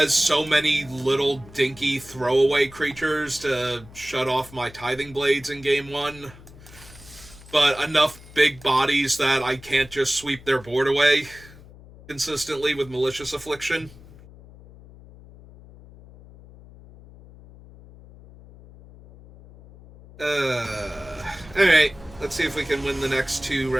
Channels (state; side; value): noise; left; hum, 20 dB below the sound